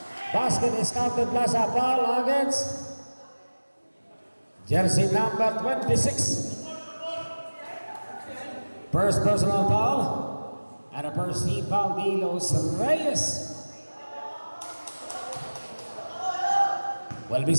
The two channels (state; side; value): inverted; both; correlation -1.00